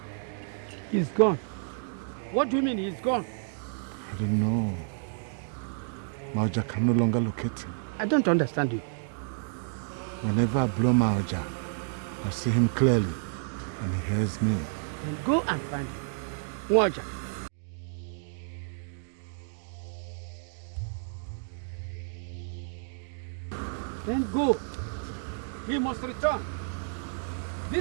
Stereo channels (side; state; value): left; silent; digital silence